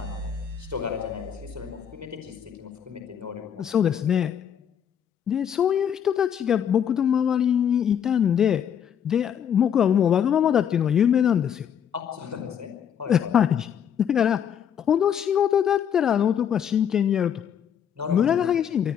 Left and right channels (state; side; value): quieter; right; 8.6 dB